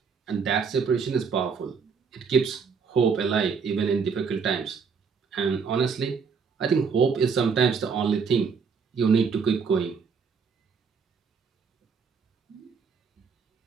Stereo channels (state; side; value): quieter; left; 5.7 dB